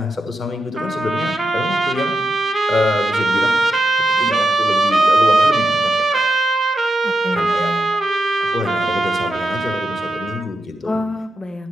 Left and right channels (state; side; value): normal; both; correlation 0.87